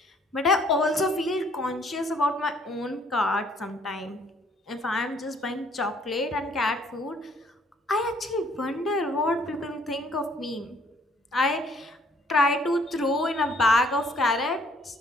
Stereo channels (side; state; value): both; normal; correlation 0.62